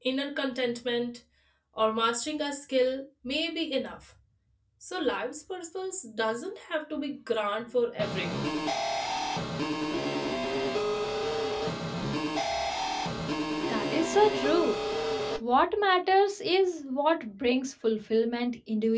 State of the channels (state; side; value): identical; both; correlation 1.00